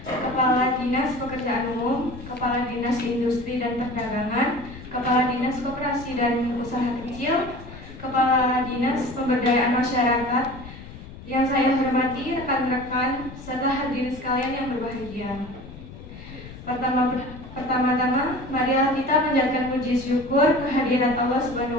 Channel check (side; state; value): left; noise; rumble, 15 dB below the sound